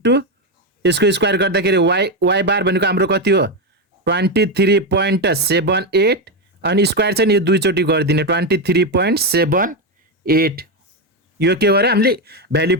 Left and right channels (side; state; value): both; normal; correlation 0.09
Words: यसको स्क्वायर गर्दाखेरि y बार भनेको हाम्रो कति हो 23.78 अनि स्क्वायर चाहिँ यो दुई चोटी गरिदिने 23.78 यो के गरे हामीले भ्यालु